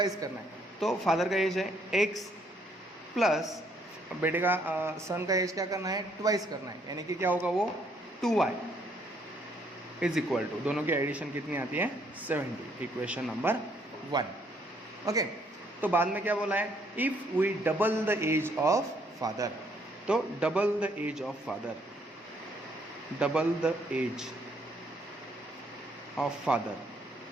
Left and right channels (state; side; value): normal; both; correlation 0.68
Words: करना है। तो फादर का एज है x प्लस बेटे का सन का एज क्या करना है, ट्वाइस करना है, यानी कि क्या होगा वो 2y इज इक्वल टू, दोनों की एडिशन कितनी आती है 70। Equation number 1। ओके, तो बाद में क्या बोला है, if we double the age of father, तो double the age of father, double the age of father,